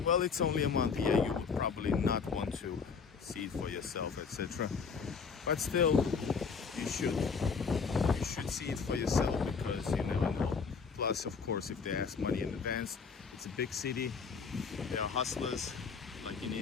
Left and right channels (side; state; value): right; quieter; 5.5 dB